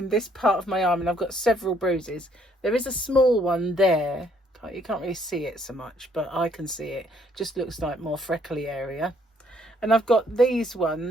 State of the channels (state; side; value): normal; both; correlation 0.67